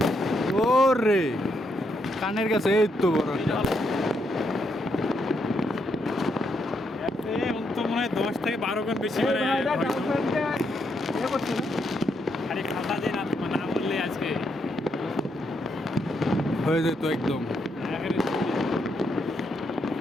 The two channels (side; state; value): both; normal; correlation 0.78